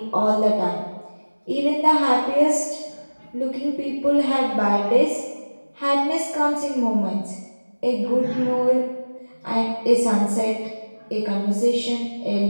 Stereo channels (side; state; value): both; inverted; correlation -1.00